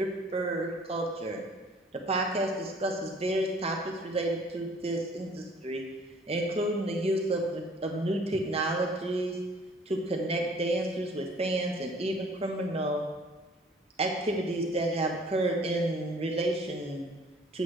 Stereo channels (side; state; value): both; normal; correlation 0.54